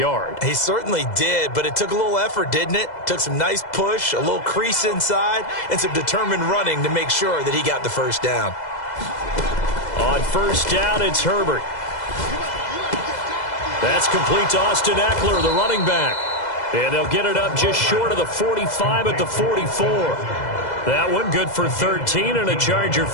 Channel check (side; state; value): right; late; 2.0 ms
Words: He certainly did, but it took a little effort, didn't it? Took some nice push, a little crease inside, and some determined running to make sure that he got the first down. On 1st down, it's Herbert. That's complete to Austin Eckler, the running back. And they'll get it up just short of the 45 at the 44. That one good for 13 and a Charger